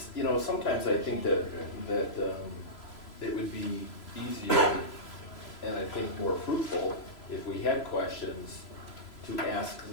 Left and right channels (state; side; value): late; right; 3.0 ms